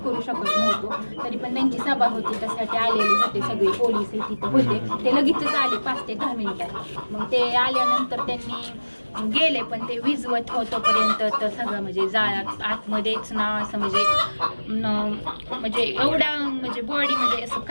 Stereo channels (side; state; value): both; inverted; correlation -1.00